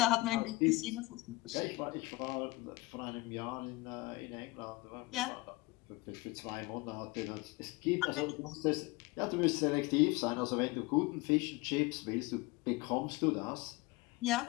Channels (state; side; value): quieter; right; 22.1 dB